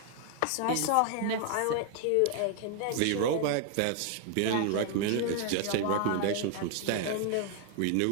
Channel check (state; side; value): different; both; correlation 0.00